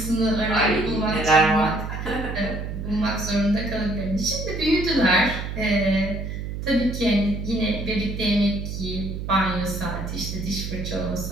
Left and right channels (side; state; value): right; noise; hum, 6 dB below the sound